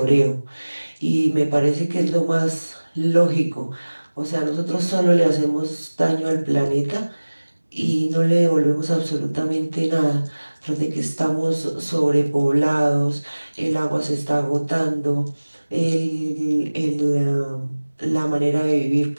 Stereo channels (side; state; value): both; inverted; correlation -1.00